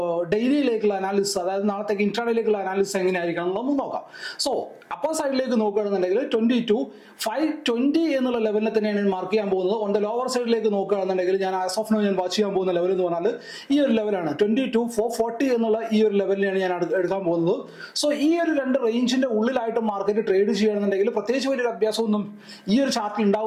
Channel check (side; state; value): both; identical; correlation 1.00